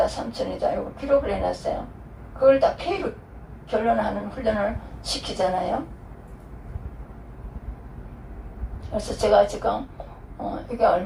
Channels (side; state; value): both; identical; correlation 1.00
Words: 3,000원이다 이거 기록을 해놨어요. 그걸 다 페이로 결론하는 훈련을 시키잖아요. 그래서 제가 지금 이게